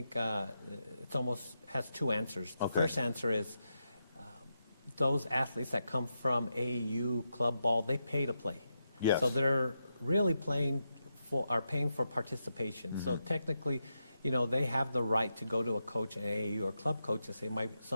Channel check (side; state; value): both; inverted; correlation -0.86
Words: it almost has two answers. The first answer is those athletes that come from AAU club ball, they pay to play. Yes. So they're really paying for participation. So technically, they have the right to go to a coach, an AAU or club coach, and say, my